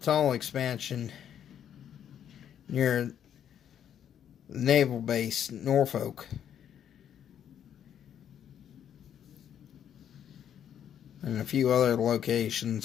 tunnel expansion near the naval base, Norfolk. And a few other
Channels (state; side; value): quieter; right; 9.5 dB